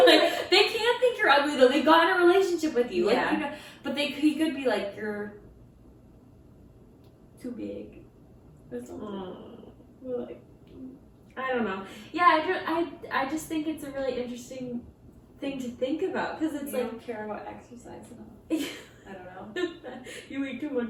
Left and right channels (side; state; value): both; identical; correlation 1.00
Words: were I mean. like, they can't think you're ugly though. They got in a relationship with you. Yeah. Like, you know, but he could be like, you're too big or something. Like, I don't know. Yeah, I just think it's a really interesting thing to think about, because it's you like, don't care about exercise enough. I don't know. you eat too